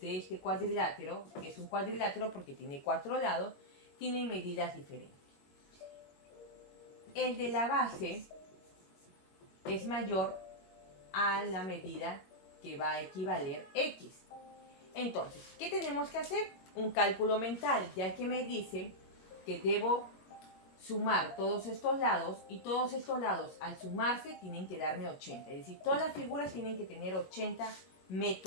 de este cuadrilátero, que es un cuadrilátero porque tiene 4 lados, tienen medidas diferentes. El de la base es mayor a la medida que va a equivaler X. Entonces, ¿qué tenemos que hacer? Un cálculo mental, ya que me dice que debo sumar todos estos lados y todos estos lados al sumarse tienen que darme 80. Es decir, todas las figuras tienen que tener 80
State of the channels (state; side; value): late; right; 21 ms